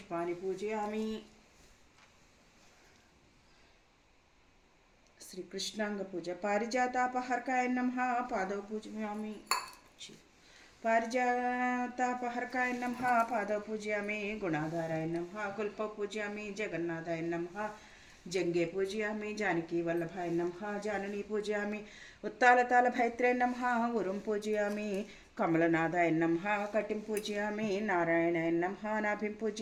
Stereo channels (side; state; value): both; identical; correlation 1.00